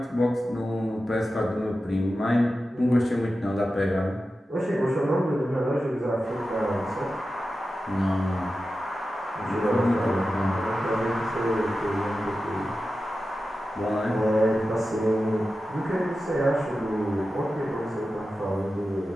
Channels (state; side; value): normal; both; correlation 0.92